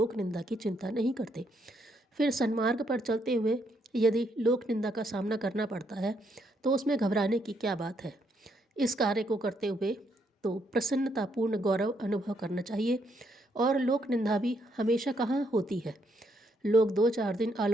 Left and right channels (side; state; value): both; normal; correlation 0.74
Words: निंदा की चिंता नहीं करते। फिर सन्मार्ग पर चलते हुए यदि लोक निंदा का सामना करना पड़ता है तो उसमें घबराने की क्या बात है। इस कार्य को करते हुए तो प्रसन्नतापूर्ण गौरव अनुभव करना चाहिए। और लोक निंदा भी हमेशा कहाँ होती है। लोग 2-4 दिन